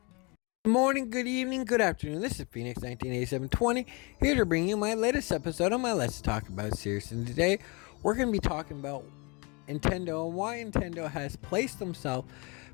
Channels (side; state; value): right; quieter; 29.7 dB